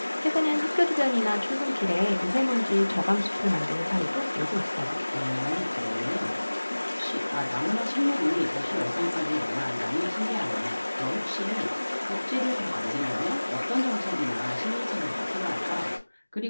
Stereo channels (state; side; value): inverted; both; correlation -1.00